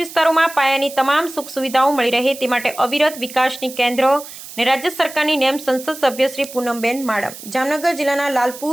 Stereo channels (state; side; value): noise; right; hiss, 14 dB below the sound